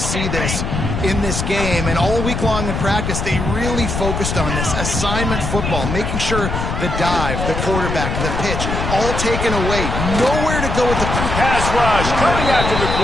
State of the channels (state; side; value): noise; left; rumble, 3 dB below the sound